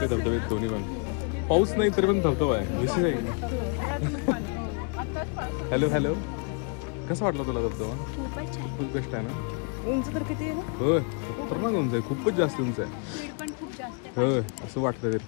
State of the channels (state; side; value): quieter; right; 37.3 dB